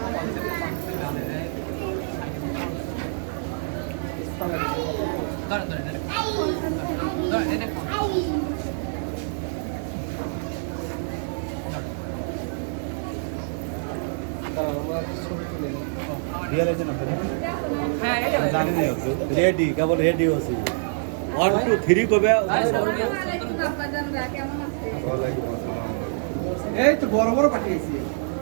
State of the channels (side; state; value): left; silent; 61 dB below the other